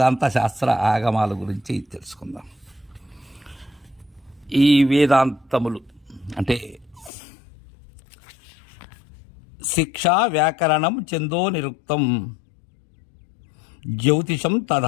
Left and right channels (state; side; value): drops out; right; at 7.1 s